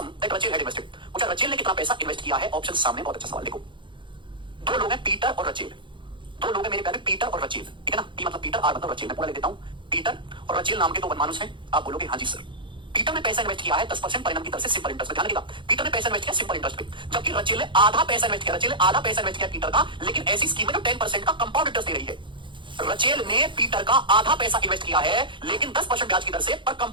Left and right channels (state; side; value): late; left; 0.23 ms